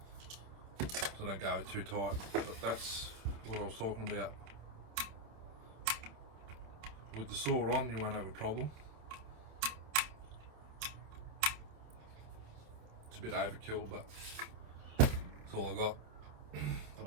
So don't go too tight, but that's what I was talking about. With the saw on, you won't have a problem. It's a bit overkill, but that's all I got. I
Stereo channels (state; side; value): late; left; 27 ms